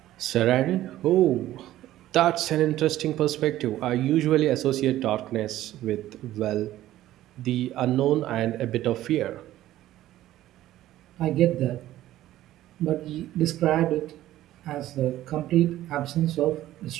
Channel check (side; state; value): left; quieter; 14.2 dB